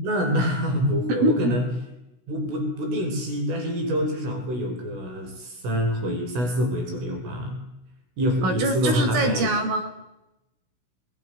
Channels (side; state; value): left; late; 16 ms